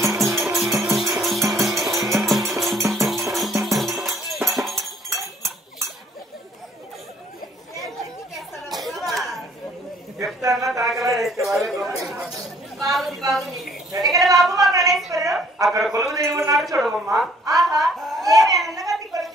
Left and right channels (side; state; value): both; normal; correlation 0.60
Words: అక్కడ కొలువు దేవి ఉన్నాడు చూడమ్మా